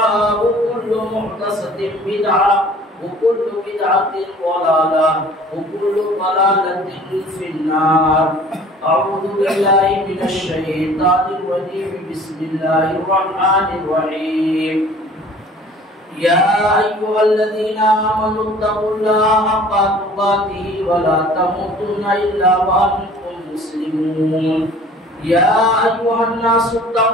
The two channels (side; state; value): both; normal; correlation 0.49